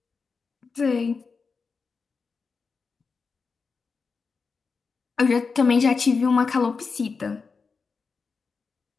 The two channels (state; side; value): quieter; right; 4.9 dB